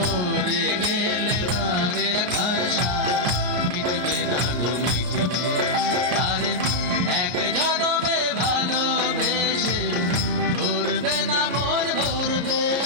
গেলে বারে রাখার সাথ মিটবে না গো, মিটবে। তারে এক জন্মে ভালোবেসে ভরবে না, মন ভরবে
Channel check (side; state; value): left; late; 33 ms